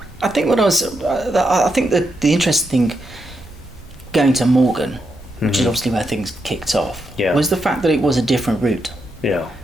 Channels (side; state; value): both; normal; correlation 0.82